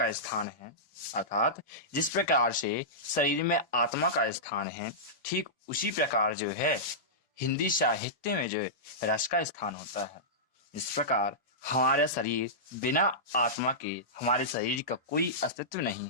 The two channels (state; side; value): normal; both; correlation -0.15